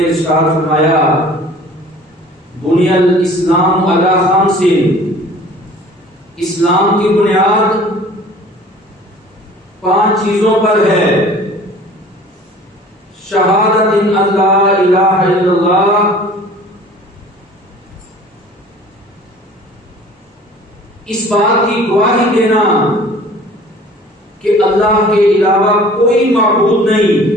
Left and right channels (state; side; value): normal; both; correlation 0.48